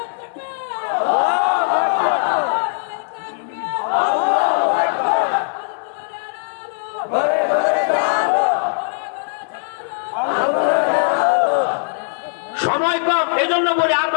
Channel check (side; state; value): right; silent; 66 dB below the other